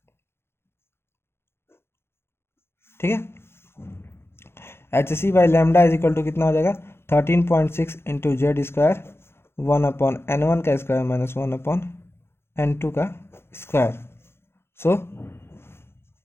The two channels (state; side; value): late; right; 0.12 ms